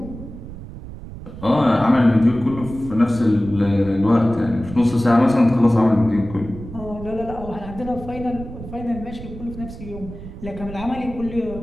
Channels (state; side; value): noise; right; rumble, 13 dB below the sound